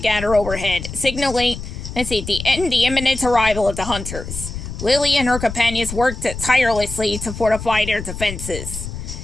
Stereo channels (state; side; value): noise; left; rumble, 9 dB below the sound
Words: overhead, signaling the imminent arrival of the hunters, Lily and her companions worked tirelessly to fortify their defenses.